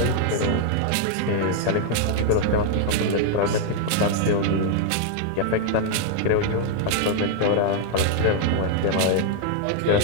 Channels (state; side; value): different; both; correlation 0.00